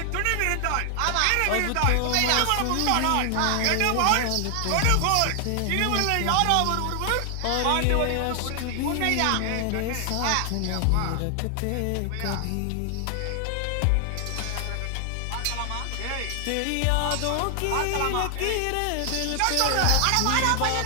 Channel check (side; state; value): both; different; correlation 0.00